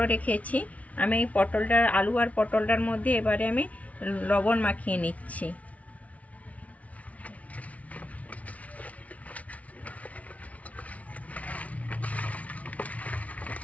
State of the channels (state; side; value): late; right; 0.067 ms